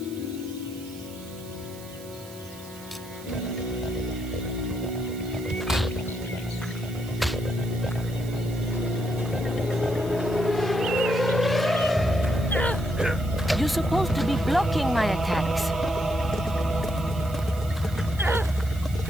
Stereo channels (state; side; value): noise; right; hiss, 19 dB below the sound